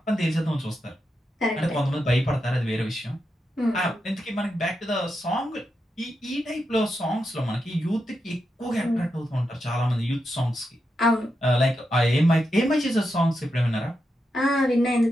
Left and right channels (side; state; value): both; normal; correlation 0.86